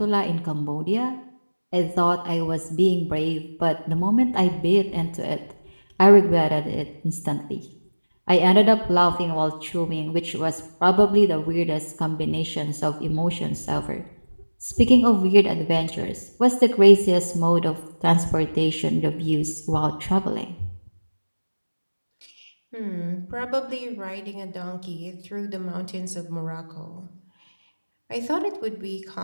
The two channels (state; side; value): inverted; both; correlation -1.00